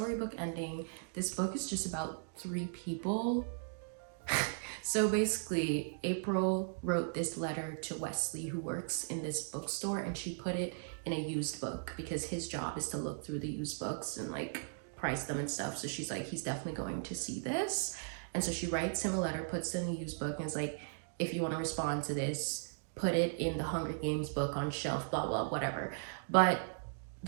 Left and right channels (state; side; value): silent; left; digital silence